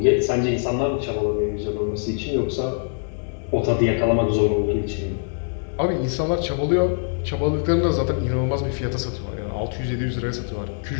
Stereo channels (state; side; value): silent; right; digital silence